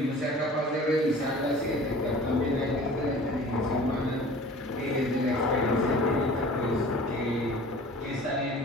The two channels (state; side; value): normal; both; correlation 0.44